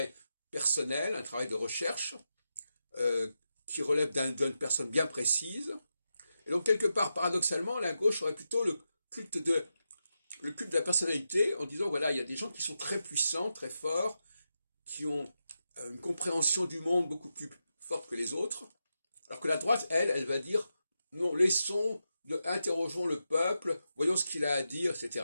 personnel, un travail de recherche, qui relève d'une personne bien précise. Et donc quelque part, paradoxalement, la gauche aurait plutôt le culte de la personnalité, en disant voilà, il y a des gens qui sont très puissants, très forts, qui ont une compréhension du monde beaucoup plus forte que les autres, alors que la droite, elle va dire non, interrogeons le peuple, voyons ce qu'il a à dire,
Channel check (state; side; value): inverted; both; correlation -0.88